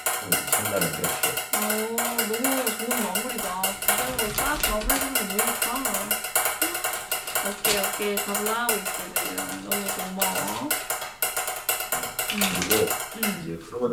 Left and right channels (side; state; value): both; identical; correlation 1.00